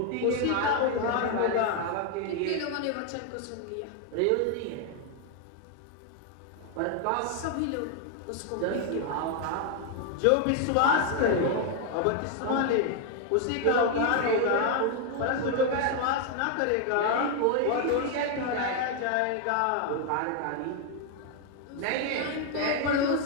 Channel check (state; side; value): different; both; correlation 0.00